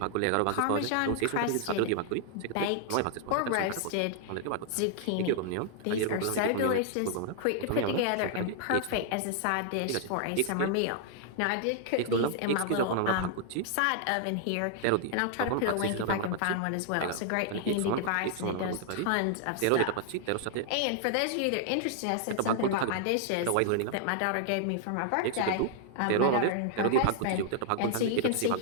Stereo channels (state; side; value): different; both; correlation 0.00